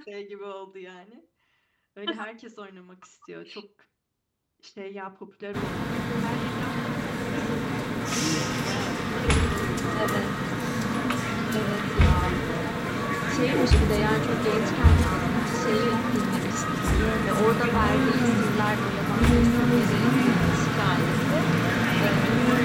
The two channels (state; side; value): identical; both; correlation 1.00